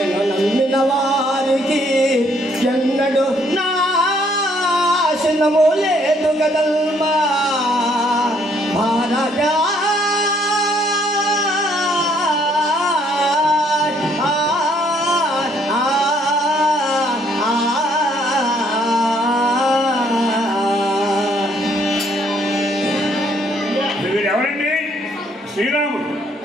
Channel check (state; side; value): normal; both; correlation 0.67